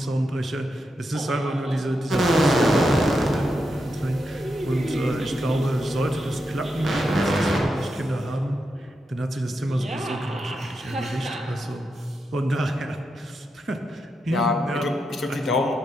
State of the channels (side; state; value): both; normal; correlation 0.86